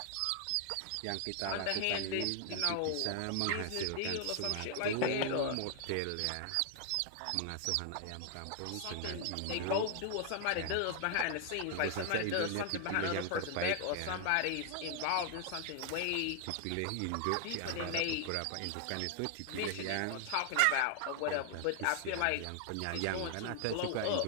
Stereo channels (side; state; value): both; different; correlation 0.00